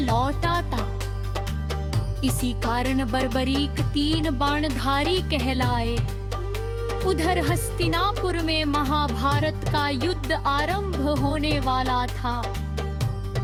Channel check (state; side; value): identical; both; correlation 1.00